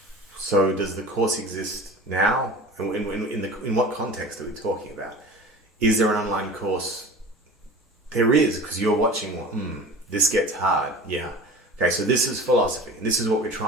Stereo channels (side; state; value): both; normal; correlation 0.38